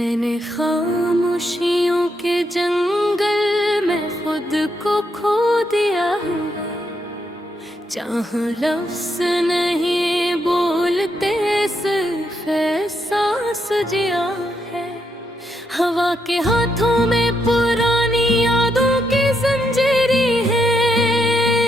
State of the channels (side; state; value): both; normal; correlation 0.79